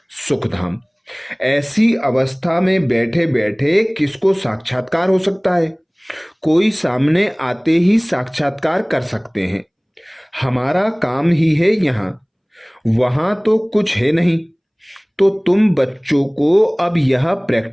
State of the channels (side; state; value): both; identical; correlation 1.00